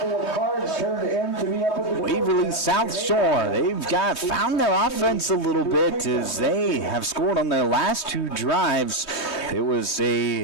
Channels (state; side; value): late; right; 3.2 ms